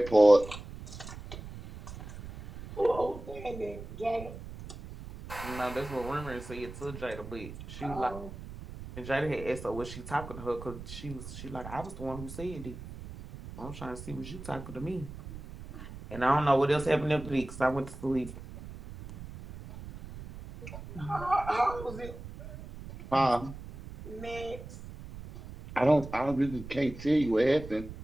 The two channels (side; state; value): right; noise; rumble, 12 dB below the sound